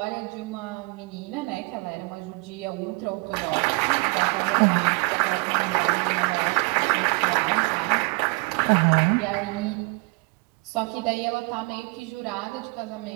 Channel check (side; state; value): left; quieter; 29.1 dB